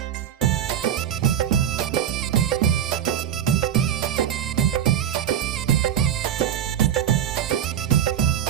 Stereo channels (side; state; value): left; quieter; 9.9 dB